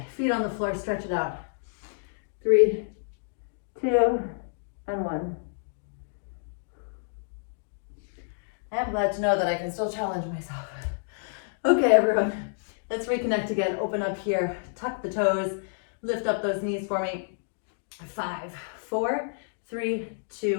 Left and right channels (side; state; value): right; silent; digital silence